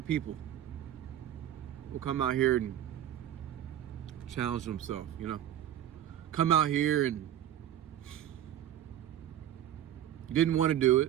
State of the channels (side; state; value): left; quieter; 11.4 dB